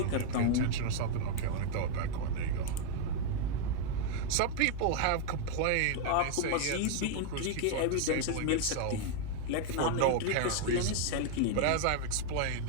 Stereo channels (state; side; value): different; both; correlation 0.00